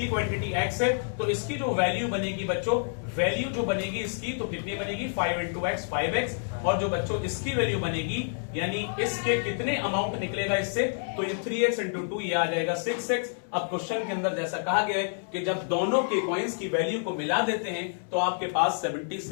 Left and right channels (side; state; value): right; silent; 59 dB below the other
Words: क्वांटिटी x है तो इसकी जो वैल्यू बनेगी बच्चों, वैल्यू जो बनेगी इसकी, तो कितनी बनेगी, 5 into x 5x, और जो बच्चों इसकी वैल्यू बनेगी, यानी इसके कितने अमाउंट निकलेगा इससे, तो ये 3x into 2 ये आ जाएगा 6x। अब क्वेश्चन के अंदर जैसा कहा गया है कि जब दोनों के कॉइन्स की वैल्यू को मिला देते हैं तो आपके पास